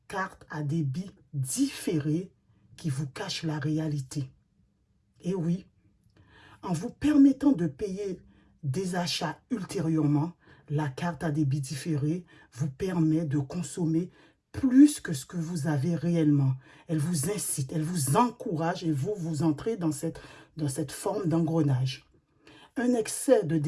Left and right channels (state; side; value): identical; both; correlation 1.00